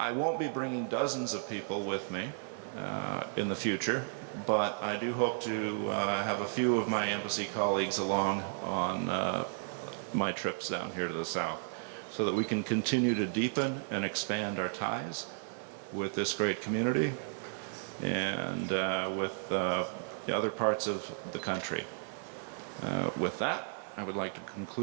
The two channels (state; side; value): silent; left; 55 dB below the other